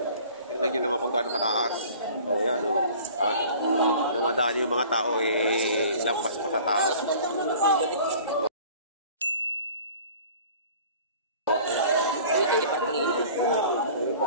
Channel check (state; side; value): inverted; both; correlation -0.47